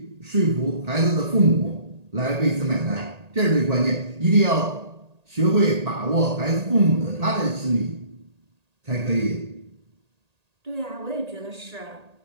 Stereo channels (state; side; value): late; left; 1.8 ms